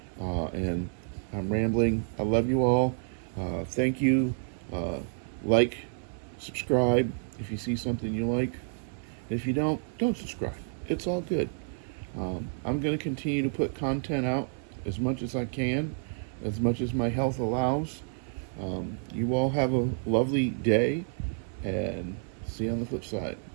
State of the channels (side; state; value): left; silent; 58 dB below the other